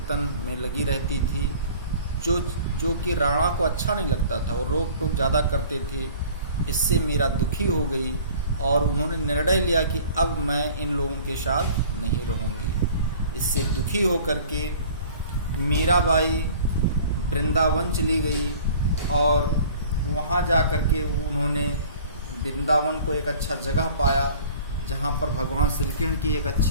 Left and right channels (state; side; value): inverted; both; correlation -0.48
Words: में लगी रहती थी, जो कि राणा को अच्छा नहीं लगता था। वो रोक टोक ज़्यादा करते थे। इससे मीरा दुखी हो गई और उन्होंने निर्णय लिया कि अब मैं इन लोगों के साथ नहीं रहूँगी। इससे दुखी होकर के मीराबाई वृंदावन चली गई और वहाँ जा कर के उन्होंने वृंदावन को एक अच्छा जगह पाया जहाँ पर भगवान श्री कृष्ण की एक